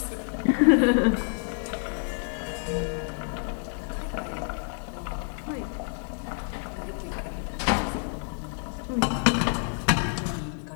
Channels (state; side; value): silent; right; 56 dB below the other